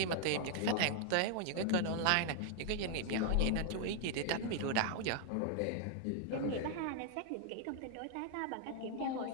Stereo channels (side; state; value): both; different; correlation 0.00